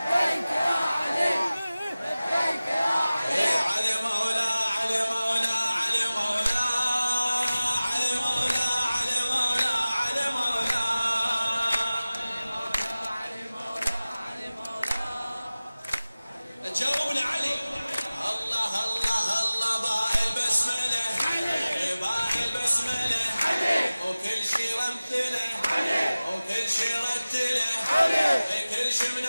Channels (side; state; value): both; inverted; correlation -0.97